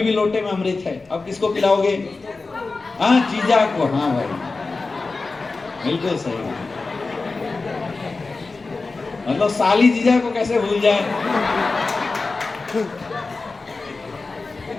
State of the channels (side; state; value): right; quieter; 3.8 dB